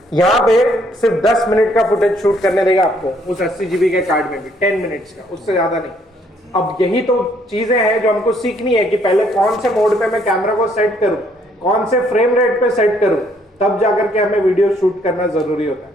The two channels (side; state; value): both; normal; correlation 0.67